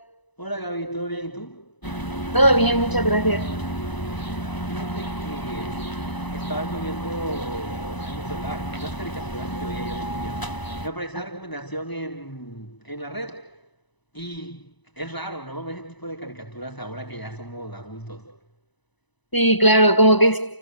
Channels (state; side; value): late; right; 1.0 ms